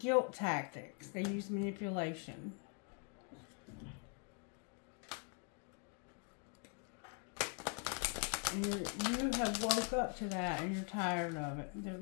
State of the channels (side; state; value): right; quieter; 38.5 dB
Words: tactics. They use manipulation. You have woke up to that and you're tired of it. It